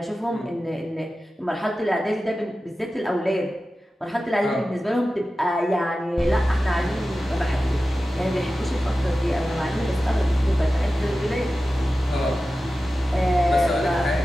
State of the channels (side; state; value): both; normal; correlation 0.94